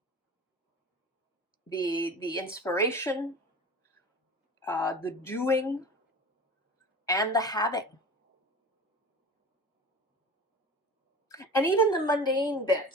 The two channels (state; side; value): normal; both; correlation 0.35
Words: The inspiration, the doing, and the having. And even the mundane